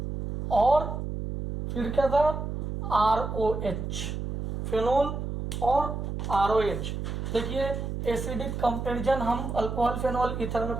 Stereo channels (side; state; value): right; noise; hum, 4 dB below the sound